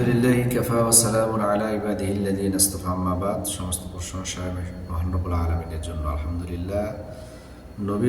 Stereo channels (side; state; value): both; identical; correlation 1.00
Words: কাফা ওয়া সালামুন আলা ইবাদিহিল্লাযীনা ইসতাফা, আম্মা বাদ। সমস্ত প্রশংসা মহান রব্বুল আলামিনের জন্য। আলহামদুলিল্লাহ,